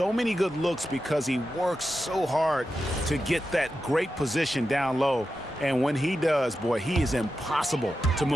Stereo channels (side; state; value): both; normal; correlation 0.90